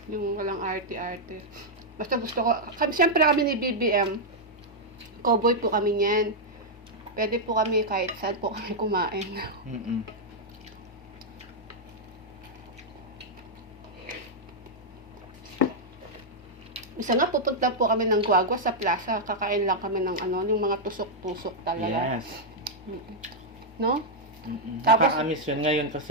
Yung walang arte-arte. Basta gusto ko, siyempre kami ni BBM, cowboy po kami niyan. Pwede po kami kahit saan po kami kumain. Isa nga, pupunta po kami ng Guagua sa plaza. Kakain lang kami ng yung mga tusok-tusok talaga. Yes. No? Tapos, nakakamiss yun ngayon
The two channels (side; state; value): both; normal; correlation -0.04